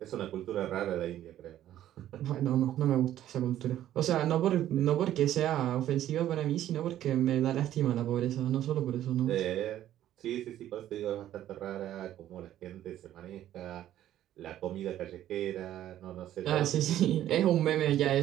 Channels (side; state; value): left; quieter; 12.4 dB